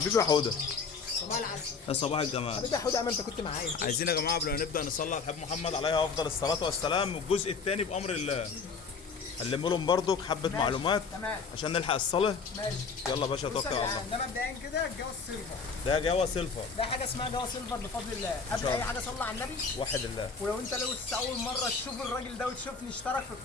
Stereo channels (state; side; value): quieter; right; 5.1 dB